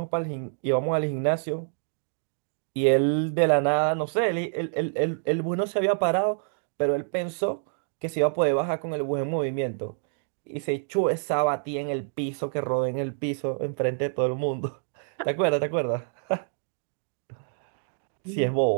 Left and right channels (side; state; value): left; silent; digital silence